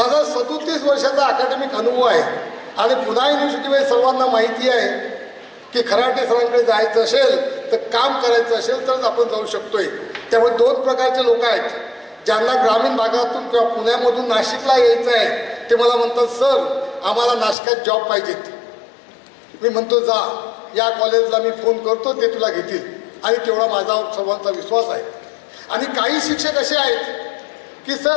37 वर्षाचा अकॅडमिक अनुभव आहे आणि पुणे युनिव्हर्सिटीमध्ये सर्वांना माहिती आहे की खराटे सरांकडे जायचं असेल तर काम करायचं असेल तरच आपण जाऊ शकतोय. त्यामुळे 2 प्रकारचे लोक आहेत, ज्यांना ग्रामीण भागातून किंवा पुण्यामधून नाशिकला यायचं आहे ते मला म्हणतात, सर आम्हाला नाशिकात जॉब पाहिजेत. मी म्हणतो जा, या कॉलेजला मी फोन करतो, ते तुला घेतील. आणि तेवढा माझा सर्वांचा विश्वास आहे. आणि काही शिक्षक असे आहेत की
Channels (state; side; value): drops out; right; at 17.6 s